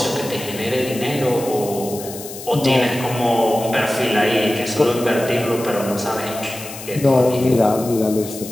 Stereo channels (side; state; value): left; noise; hiss, 12 dB below the sound